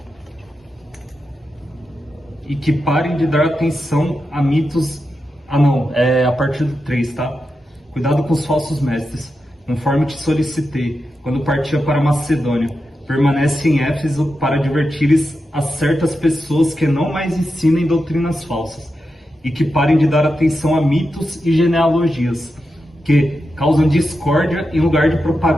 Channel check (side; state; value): both; normal; correlation 0.89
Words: E que parem de dar atenção a mitos... Ah não, é a partir do 3, tá? Cuidado com os falsos mestres, conforme te solicitei, quando partia para Macedônia. Permanece em Éfeso para advertires a certas pessoas que não mais ensinem doutrinas falsas, e que parem de dar atenção a mitos e genealogias, que causam discórdia em lugar de